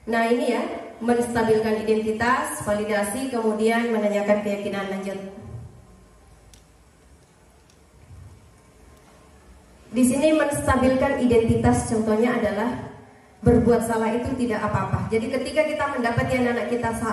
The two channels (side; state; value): both; identical; correlation 1.00